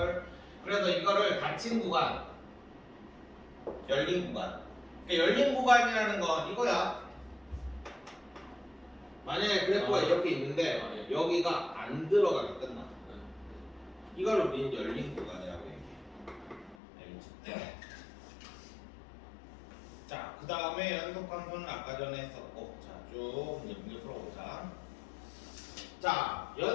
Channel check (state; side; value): drops out; right; at 16.8 s